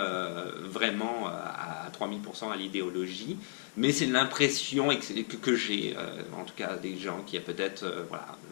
vraiment à 3000% à l'idéologie. Mais c'est l'impression que j'ai, en tout cas des gens qui a peut-être, voilà,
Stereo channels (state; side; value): silent; right; 55 dB below the other